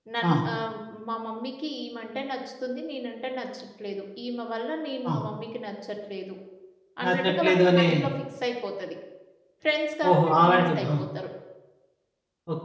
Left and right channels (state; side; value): identical; both; correlation 1.00